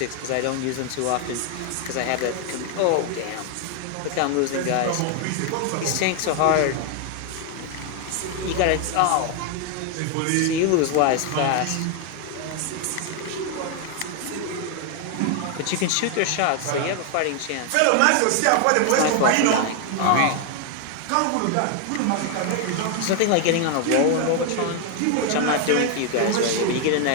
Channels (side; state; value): both; different; correlation 0.01